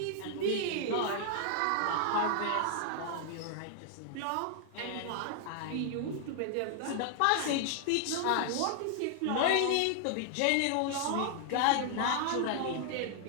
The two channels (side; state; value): both; different; correlation 0.00